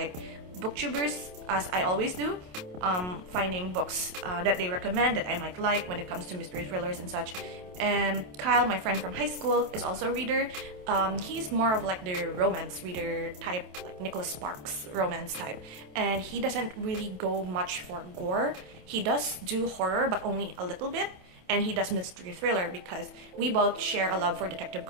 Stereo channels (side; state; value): left; late; 28 ms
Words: booktubers, as I always do, finding books that they recommend that I might like when it comes to mystery thrillers and such. And Kyle, my friend from high school, is also a reader. He's more of like the romance reader type, like Nicholas Sparks romance type, and he doesn't really go much for gore. He does do horror, but only a little bit. And he does mystery thriller because we both share a love for Detective